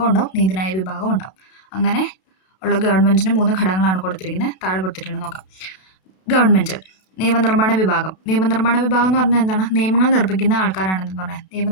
ഉണ്ടാവും, നീതിന്യായ വിഭാഗം ഉണ്ടാവും. അങ്ങനെ ഉള്ള ഗവൺമെൻറ്റിന് 3 ഘടകങ്ങളാണ് കൊടുത്തിരിക്കുന്നത്. താഴെ കൊടുത്തിട്ടുണ്ട്, നോക്കാം. ഗവൺമെൻറ് നിയമനിർമ്മാണ വിഭാഗം. നിയമനിർമ്മാണ വിഭാഗം എന്ന് പറഞ്ഞാൽ എന്താണ്? നിയമങ്ങൾ നിർമ്മിക്കുന്ന ആൾക്കാരാണെന്ന് പറയാം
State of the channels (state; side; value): late; right; 32 ms